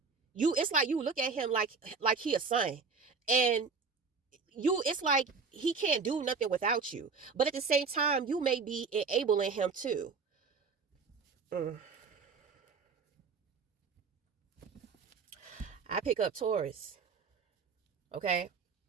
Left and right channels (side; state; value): left; quieter; 4.9 dB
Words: It's like you look at him like he a son, and it's like he can't do nothing without you. But at the same time, you may be enabling him too. I pick up Taurus. Okay.